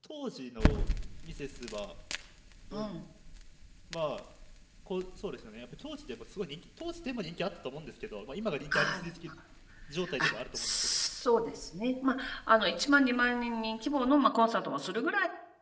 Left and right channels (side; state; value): both; identical; correlation 1.00